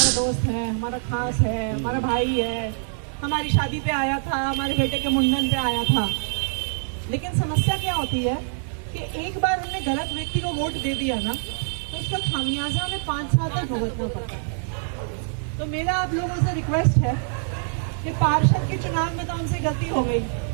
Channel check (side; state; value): left; silent; digital silence